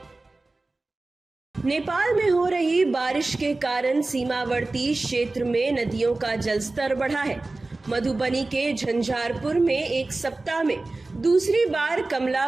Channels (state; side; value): quieter; left; 3.2 dB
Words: नेपाल में हो रही बारिश के कारण सीमावर्ती क्षेत्र में नदियों का जलस्तर बढ़ा है। मधुबनी के झंझारपुर में एक सप्ताह में दूसरी बार कमला